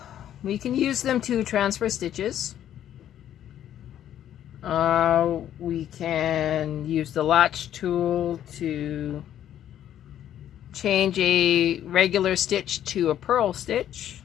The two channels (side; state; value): right; quieter; 11.0 dB